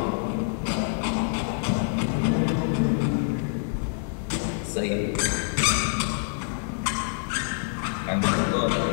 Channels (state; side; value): silent; right; digital silence